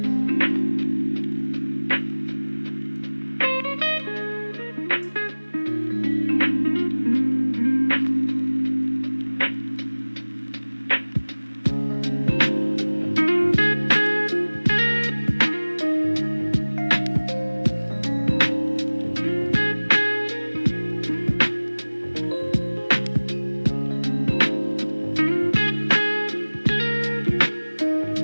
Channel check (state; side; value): inverted; both; correlation -1.00